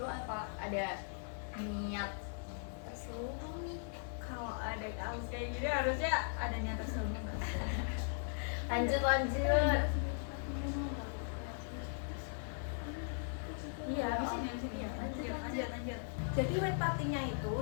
apa ada niat terselubung nih? Kalau ada kasus kayak gini harusnya ada niat terselubung. Lanjut. Iya, di sini ya. Lanjut. Jadi white party-nya itu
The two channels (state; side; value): silent; right; digital silence